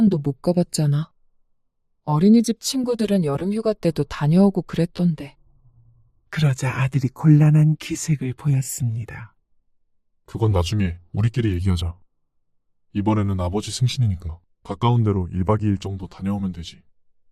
못 가봤잖아. 어린이집 친구들은 여름 휴가 때도 다녀오고 그랬던데. 그러자 아들이 곤란한 기색을 보였습니다. 그건 나중에 우리끼리 얘기하자. 이번에는 아버지 생신이니까 가까운 데로 1박 2일 정도 다녀오면 되지.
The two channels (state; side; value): identical; both; correlation 1.00